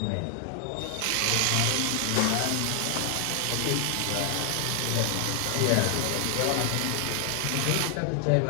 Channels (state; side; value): different; both; correlation 0.00